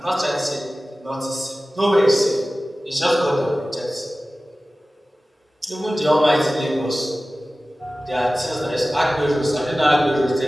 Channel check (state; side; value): normal; both; correlation 0.96